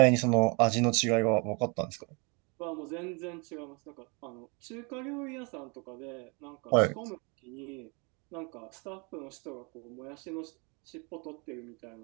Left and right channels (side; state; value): left; quieter; 31.9 dB